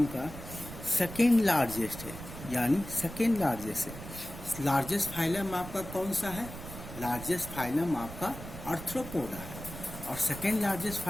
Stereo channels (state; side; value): noise; right; rumble, 12 dB below the sound